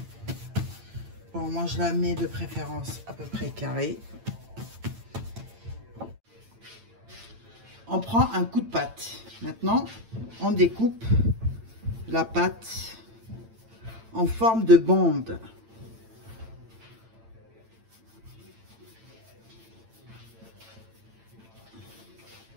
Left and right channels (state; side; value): late; left; 8.9 ms